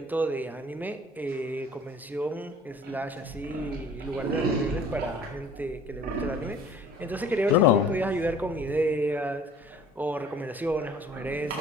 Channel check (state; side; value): normal; both; correlation 0.50